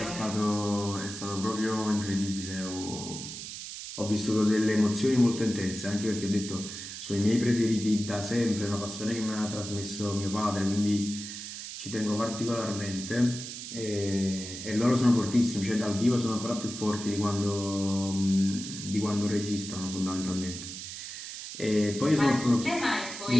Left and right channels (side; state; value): right; noise; hiss, 9 dB below the sound